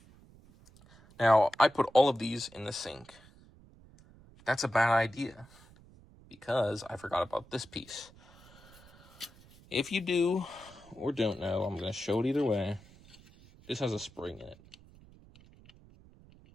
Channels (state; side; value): noise; right; rumble, 24 dB below the sound